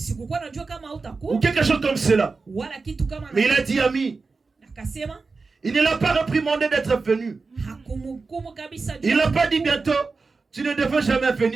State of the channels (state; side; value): quieter; left; 4.2 dB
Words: Ou quelque chose comme cela. Mais il a dit, ami, il ne l'a pas réprimandé d'être venu. Il n'a pas dit bientôt, tu ne devais jamais